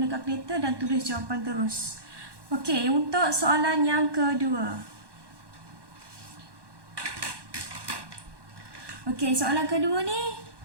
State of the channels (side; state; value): left; late; 1.1 ms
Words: kalkulator dan tulis jawapan terus. Okey, untuk soalan yang kedua. Okey, soalan kedua ni